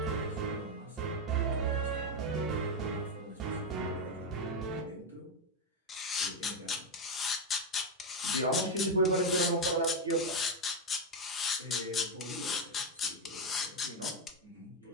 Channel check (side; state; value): both; normal; correlation 0.06